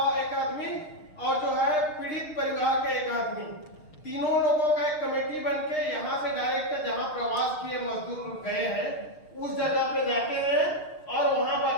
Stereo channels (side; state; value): right; late; 6.5 ms